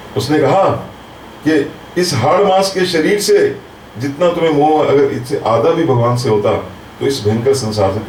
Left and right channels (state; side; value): identical; both; correlation 1.00